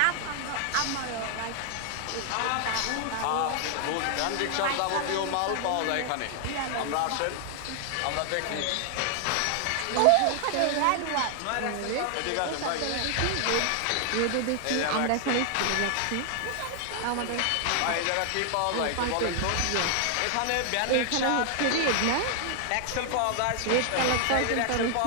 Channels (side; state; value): both; different; correlation 0.00